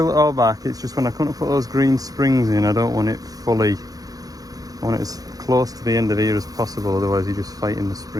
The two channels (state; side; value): late; left; 0.18 ms